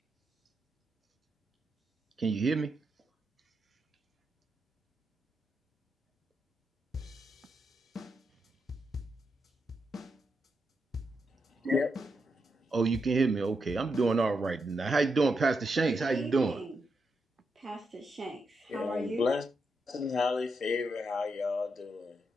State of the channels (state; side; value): normal; both; correlation 0.83